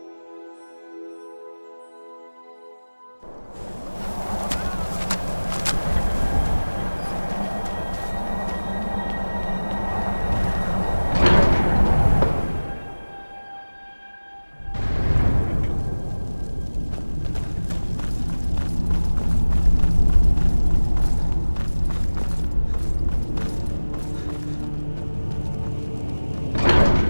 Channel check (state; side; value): inverted; both; correlation -1.00